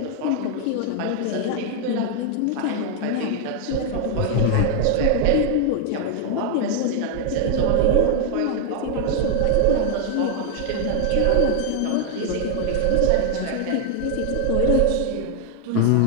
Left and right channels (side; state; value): both; different; correlation 0.00